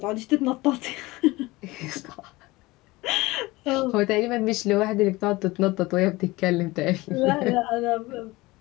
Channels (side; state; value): right; quieter; 20.9 dB